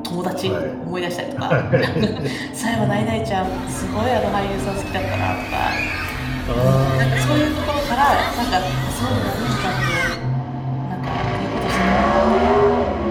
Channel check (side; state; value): both; identical; correlation 1.00